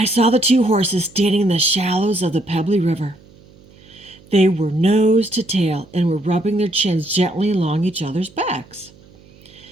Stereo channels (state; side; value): noise; right; hum, 26 dB below the sound